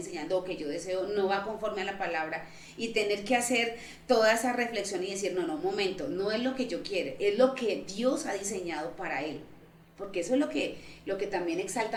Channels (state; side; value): identical; both; correlation 1.00